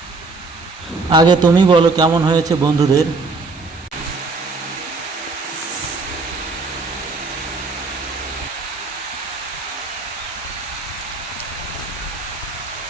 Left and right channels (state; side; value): quieter; left; 3.9 dB